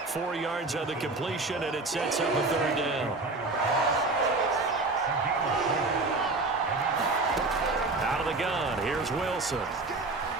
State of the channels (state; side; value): quieter; left; 3.4 dB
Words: 4 yards on the completion, and it sets up a third down. Out of the gun, here's Wilson.